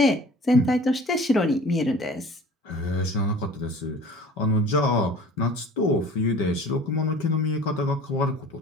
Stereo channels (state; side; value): normal; both; correlation 0.45